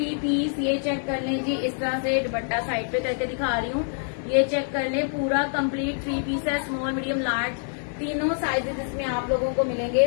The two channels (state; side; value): silent; right; 61 dB below the other